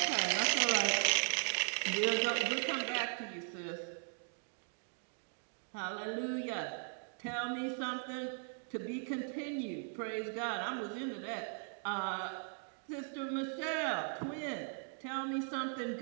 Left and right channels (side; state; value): left; silent; 52 dB below the other